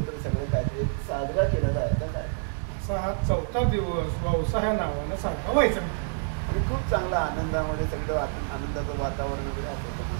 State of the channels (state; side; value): silent; left; digital silence